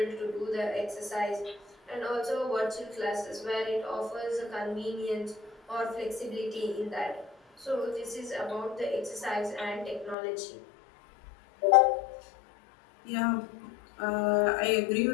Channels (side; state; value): right; drops out; at 10.2 s